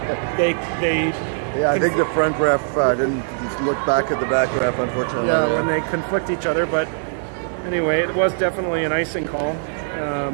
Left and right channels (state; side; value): silent; left; digital silence